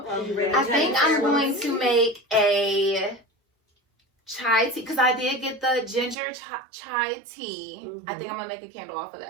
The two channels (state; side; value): drops out; left; at 6.2 s